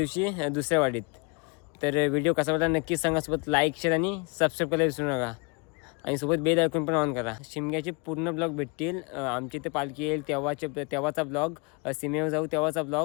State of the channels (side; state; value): right; quieter; 31.8 dB